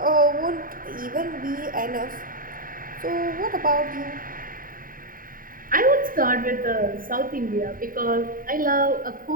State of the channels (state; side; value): late; left; 0.41 ms